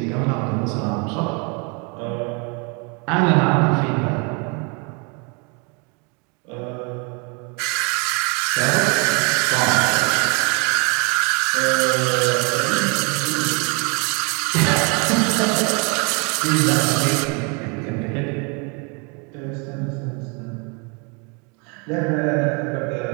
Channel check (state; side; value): quieter; left; 33.3 dB